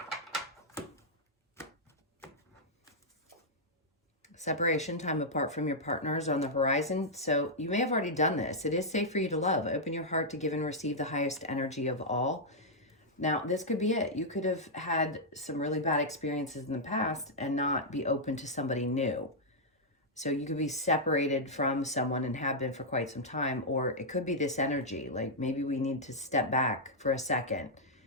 Separation, time apart from your partner is on the horizon. So you may have already done this. It is safe for you to love. Open your heart to give and receive the highest energy of all. Now, this could be it. You could have had some really bad experiences in the past and not be open to somebody new. So you could be separated from someone and have been for quite some time, or it could be this energy. Like maybe we need to step back for a second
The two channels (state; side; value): normal; both; correlation -0.07